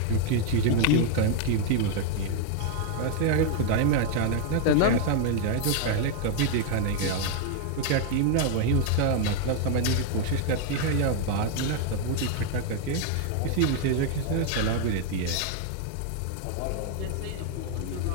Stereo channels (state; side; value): different; both; correlation 0.00